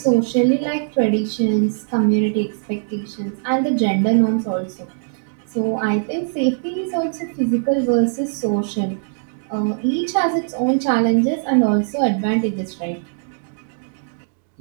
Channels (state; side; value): silent; left; digital silence